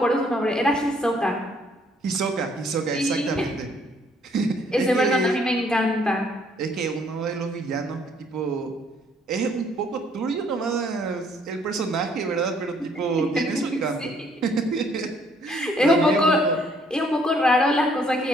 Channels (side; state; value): both; normal; correlation 0.64